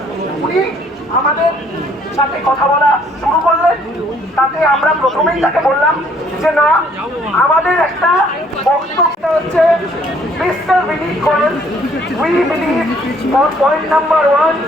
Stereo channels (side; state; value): both; normal; correlation 0.63